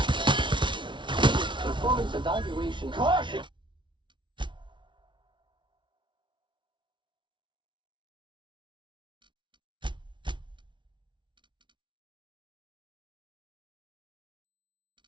Performance evaluation. Caution.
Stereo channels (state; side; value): late; left; 0.24 ms